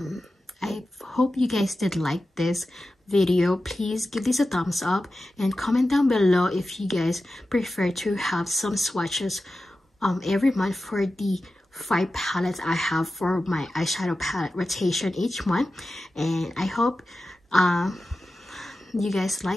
hope you guys did like this video. Please give this a thumbs up and comment down below if you guys prefer to have some swatches every month for the 5 palettes I have for my eyeshadow palette rotation each month. And I hope you guys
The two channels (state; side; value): normal; both; correlation 0.93